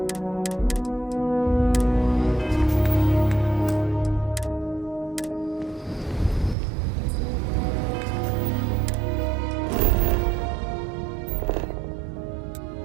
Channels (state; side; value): drops out; left; at 6.6 s